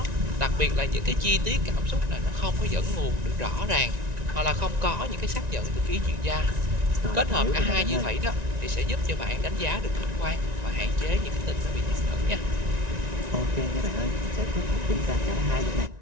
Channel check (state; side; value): late; left; 1.9 ms